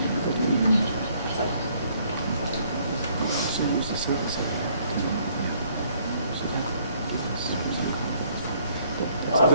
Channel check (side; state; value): both; inverted; correlation -0.64